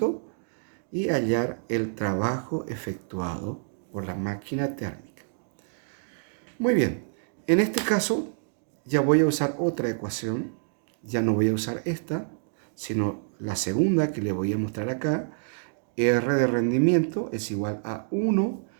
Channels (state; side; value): silent; left; digital silence